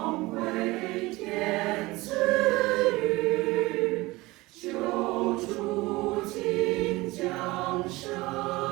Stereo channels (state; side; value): quieter; left; 21.0 dB